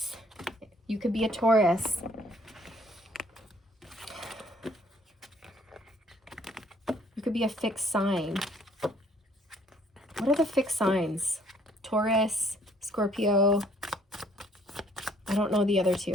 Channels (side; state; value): both; normal; correlation 0.62